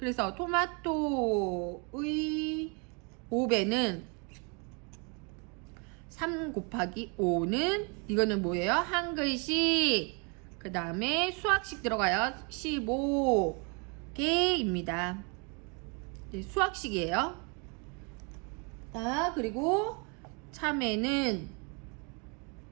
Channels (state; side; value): quieter; left; 34.0 dB